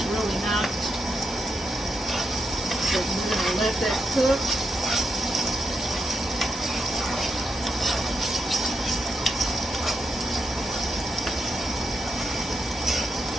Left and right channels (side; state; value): both; normal; correlation 0.83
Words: really not. So we're going to let that cook.